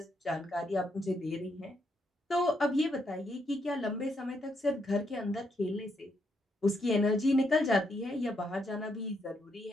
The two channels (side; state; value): both; normal; correlation 0.77